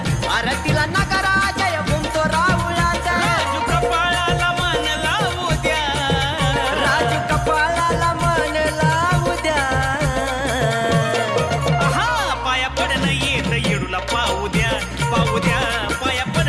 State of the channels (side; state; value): both; identical; correlation 1.00